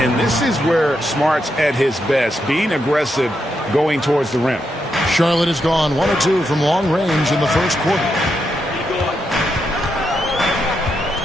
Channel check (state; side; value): normal; both; correlation 0.83